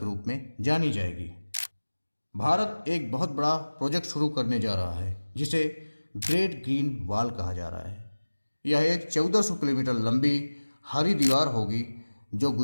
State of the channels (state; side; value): inverted; both; correlation -1.00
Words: रूप में जानी जाएगी। भारत एक बहुत बड़ा प्रोजेक्ट शुरू करने जा रहा है जिसे ग्रेट ग्रीन वॉल कहा जा रहा है। यह एक 1400 किलोमीटर लंबी हरी दीवार होगी जो